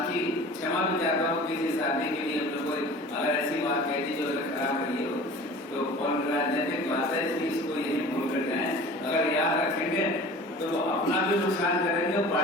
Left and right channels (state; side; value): normal; both; correlation 0.42